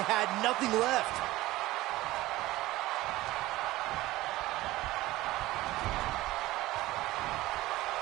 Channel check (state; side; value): quieter; left; 17.6 dB